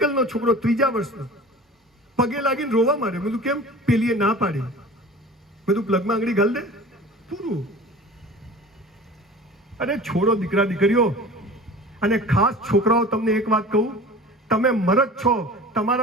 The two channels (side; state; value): both; normal; correlation 0.40